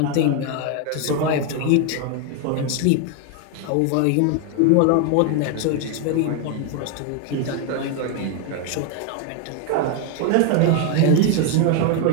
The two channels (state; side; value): different; both; correlation 0.01